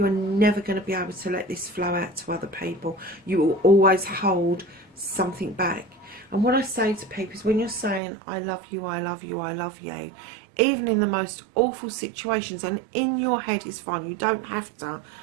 never going to be able to let this flow out to other people. You will always hold something back. And what I say to people is, when you're saying I love you, I love you, I love you, even in the most awful situations, and in your head is fine, you don't have to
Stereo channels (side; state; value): left; drops out; at 8.0 s